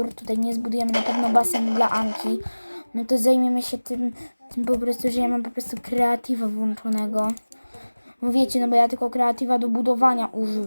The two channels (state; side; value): inverted; both; correlation -1.00